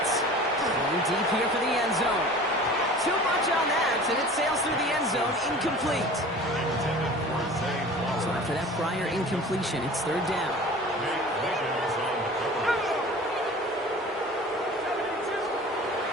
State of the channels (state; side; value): normal; both; correlation 0.41